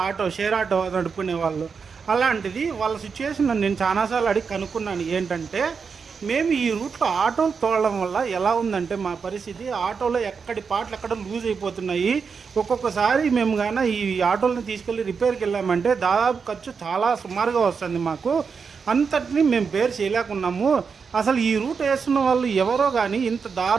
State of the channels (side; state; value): left; quieter; 5.7 dB